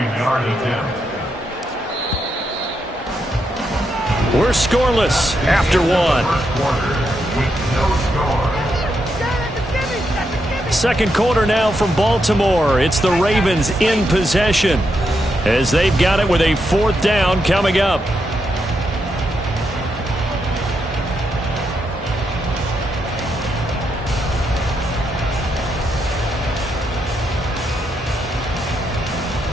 attempt. We're scoreless after one. Second quarter now from Baltimore. It's the Ravens in possession as they've got it with a 4th down coming up.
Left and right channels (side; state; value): both; normal; correlation 0.82